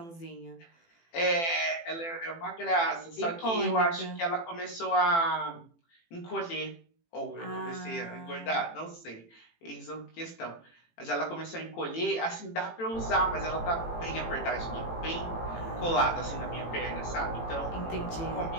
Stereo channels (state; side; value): late; right; 18 ms